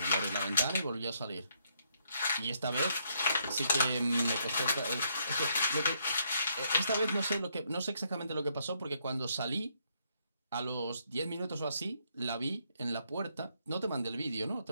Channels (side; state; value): both; inverted; correlation -0.73